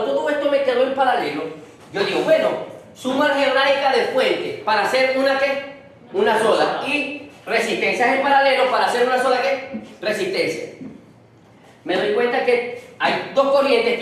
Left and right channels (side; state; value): both; identical; correlation 1.00